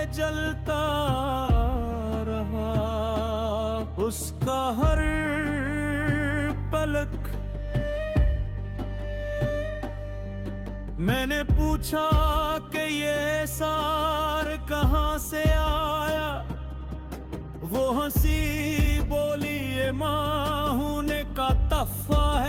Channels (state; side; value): identical; both; correlation 1.00